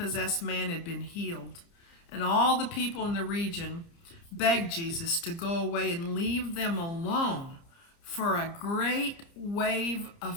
man had been healed. And all the people in the region begged Jesus to go away and leave them alone, for a great wave of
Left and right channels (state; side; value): late; right; 30 ms